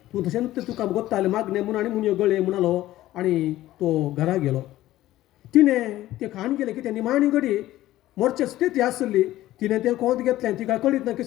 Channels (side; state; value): right; quieter; 15.1 dB